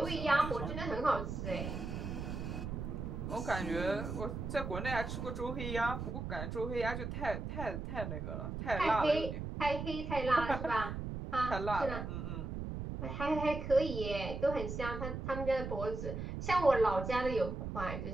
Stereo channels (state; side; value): noise; right; rumble, 5 dB below the sound